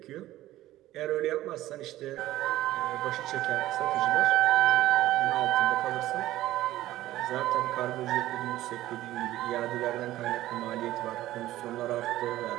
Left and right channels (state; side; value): quieter; left; 15.1 dB